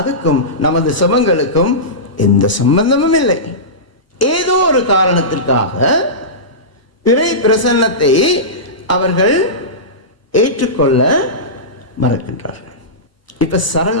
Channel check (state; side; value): late; right; 1.0 ms